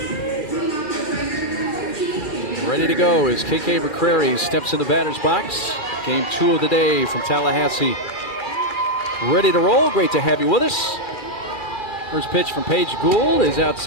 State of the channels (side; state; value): right; late; 2.3 ms